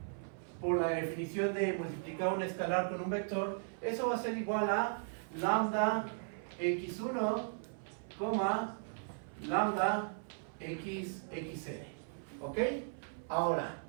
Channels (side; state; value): left; silent; 53 dB below the other